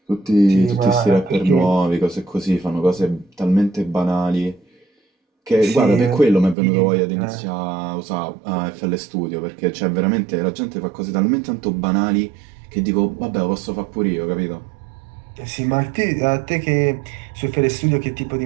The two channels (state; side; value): drops out; left; at 6.6 s